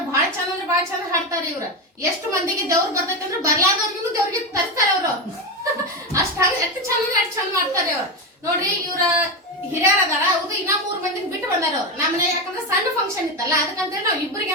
ಭಾಳ ಚಂದ ಅಂದ್ರೆ ಭಾಳ ಚಂದ ಹಾಡ್ತಾರ ಇವ್ರ. ಎಷ್ಟು ಮಂದಿಗೆ ದೇವ್ರ ಬರ್ತೈತಿ ಅಂದ್ರೆ ಬರ್ಲಾದವ್ರಿಗೂ ದೇವ್ರಿಗೆ ತರ್ಸ್ತಾರ ಅವ್ರು. ಅಷ್ಟ ಎಷ್ಟು ಚಂದ ಅಂದ್ರೆ ಅಷ್ಟ್ ಚಂದ ಮಾಡ್ತಾರೆ ಅವ್ರು. ನೋಡ್ರಿ ಇವ್ರ ಹಿರಿಯರ್ ಅದಾರ. ಹೌದು, ಇನ್ನ 3 ಮಂದಿಗೆ ಬಿಟ್ಟು ಬಂದಾರ ಅವ್ರು ನಮ್ಮನೆ. ಯಾಕಂದ್ರೆ ಸಣ್ಣ ಫಂಕ್ಷನ್ ಇತ್ತಲ್ಲ, ಅದಕ್ಕಂತೇಳಿ ನಾವ್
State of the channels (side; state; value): both; normal; correlation 0.14